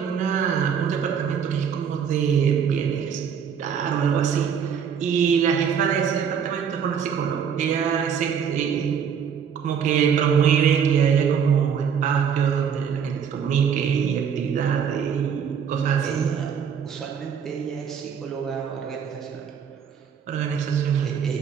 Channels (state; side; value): quieter; left; 7.4 dB